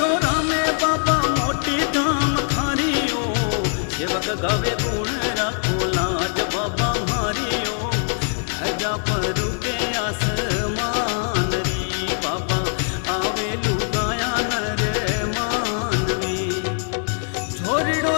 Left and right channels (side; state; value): right; silent; 60 dB below the other